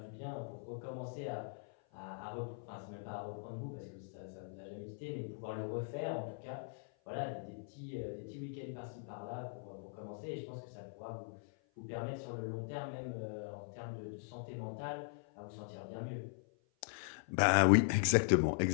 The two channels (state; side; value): silent; right; 51 dB below the other